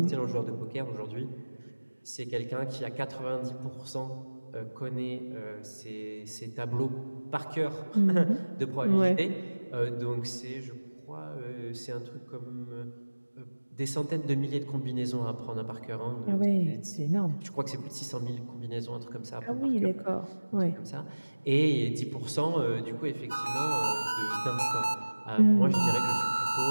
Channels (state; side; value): inverted; both; correlation -1.00